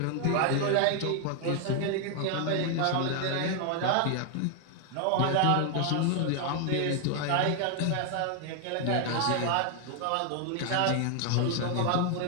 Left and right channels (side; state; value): both; different; correlation 0.00